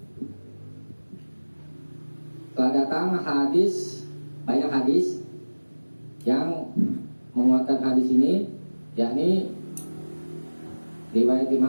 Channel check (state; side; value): inverted; both; correlation -1.00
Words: telah datang hadis, banyak hadis yang menguatkan hadis ini, yakni riwayat